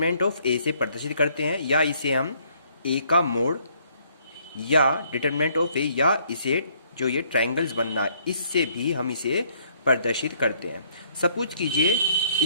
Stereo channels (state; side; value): inverted; both; correlation -0.65